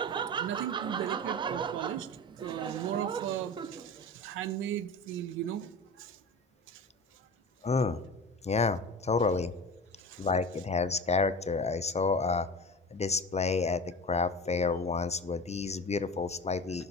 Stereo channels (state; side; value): normal; both; correlation 0.32